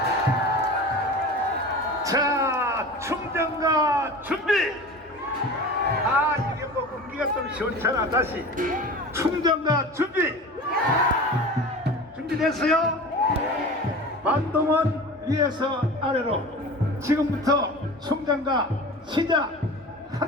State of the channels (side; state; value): both; normal; correlation 0.35